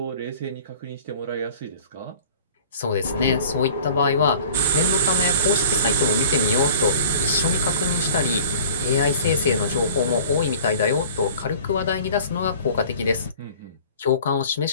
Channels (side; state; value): both; inverted; correlation -0.46